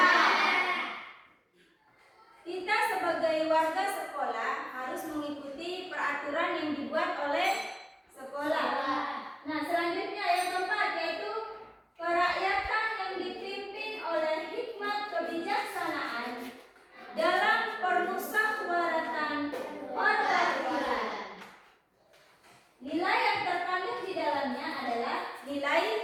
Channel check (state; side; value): identical; both; correlation 1.00